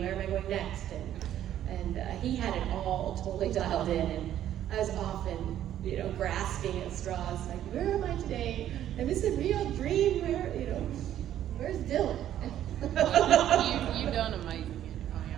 Where am I going next? And he had it all totally dialed in, and I was often, you know, grasping at straws, like, where am I today? Am this a real dream? Where, you know, where's Dylan? You've done amazing.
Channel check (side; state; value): left; quieter; 11.5 dB